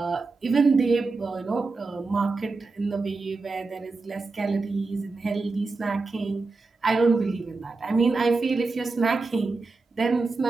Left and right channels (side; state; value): left; quieter; 3.8 dB